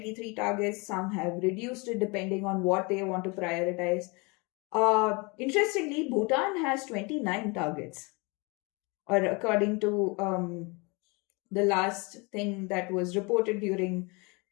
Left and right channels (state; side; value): quieter; right; 28.8 dB